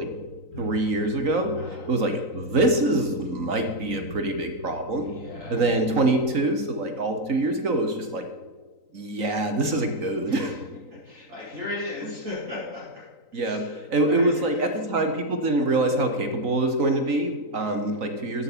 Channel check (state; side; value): late; left; 3.9 ms